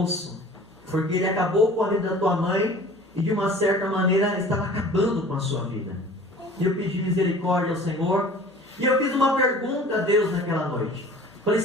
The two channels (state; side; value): normal; both; correlation 0.45